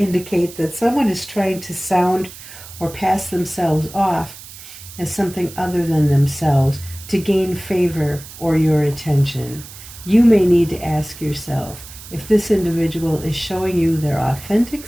that someone is trying to sound or pass themselves off as something other than themselves to gain favor or your attention. You may need to ask yourself if this individual is showing you their authentic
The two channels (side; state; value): right; noise; hiss, 16 dB below the sound